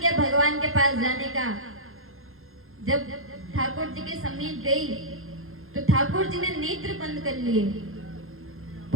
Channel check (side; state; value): left; late; 0.61 ms